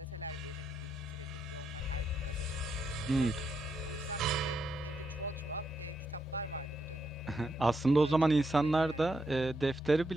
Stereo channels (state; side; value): normal; both; correlation 0.80